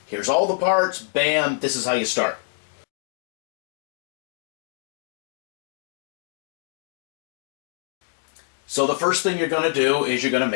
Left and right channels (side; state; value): right; silent; digital silence